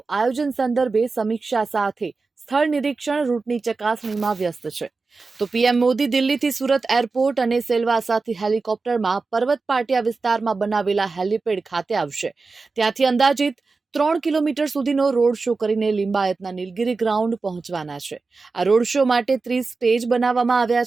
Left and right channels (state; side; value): quieter; left; 4.1 dB